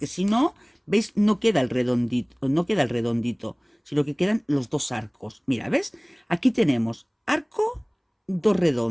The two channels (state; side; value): identical; both; correlation 1.00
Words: si no, ¿veis? No queda el redondito, sino que quedan los 2 arcos. Mira, ¿ves? Aquí tenemos arco, 2